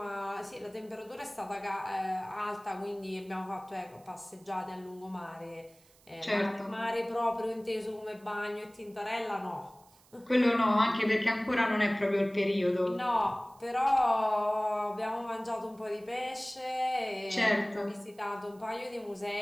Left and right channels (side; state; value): right; noise; hiss, 29 dB below the sound